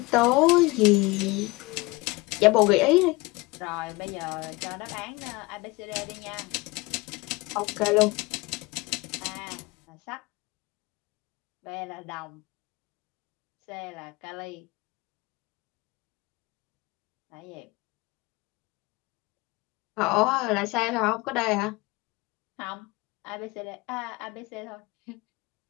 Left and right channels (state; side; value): quieter; right; 23.2 dB